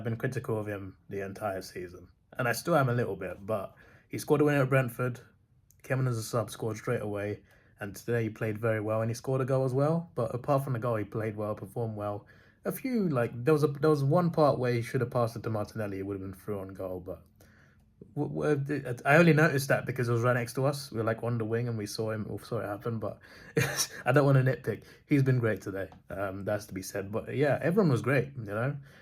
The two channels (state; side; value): identical; both; correlation 1.00